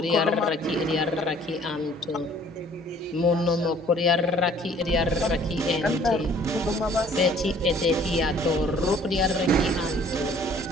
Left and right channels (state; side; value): normal; both; correlation 0.56